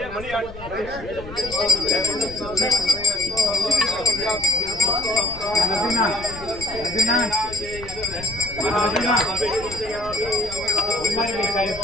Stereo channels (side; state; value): left; noise; rumble, 15 dB below the sound